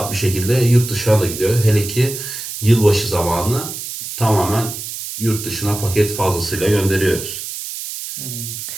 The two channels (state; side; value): noise; right; hiss, 8 dB below the sound